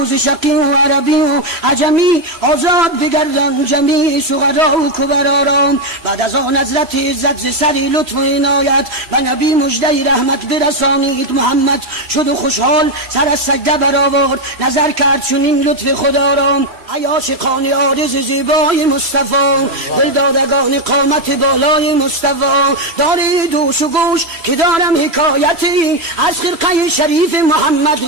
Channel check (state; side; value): late; left; 3.0 ms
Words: و ز شقی و عربی و عجمی آزاد بگردم. بودن جمیع سغرا و کبرارام. بعد از آن حضرت عزت ز سری لطف و عنایت و نبی مژده رحمت برسانید. محمد شد و خوشحال سر از سجده برآورد، نظر کرد چنین لطف خدا را. ای عاشقان عارض زیبای مصطفی، دلدادگان قامت بالای مصطفی، دارید دوش و گوش که دارم حکایتی از خرقه شریف محمد